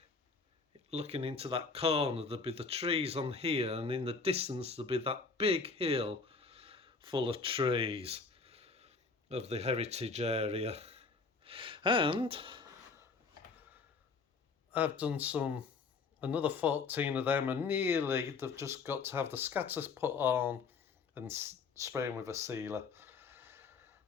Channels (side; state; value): right; quieter; 4.5 dB